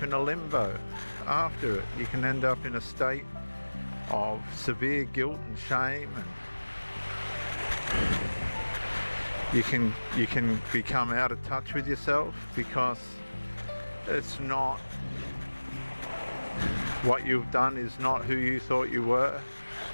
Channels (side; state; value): both; inverted; correlation -1.00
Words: in a limbo after it. You can end up in a state of severe guilt and shame, and you can become out of touch with yourself because it's not what you've done is not who you thought you were.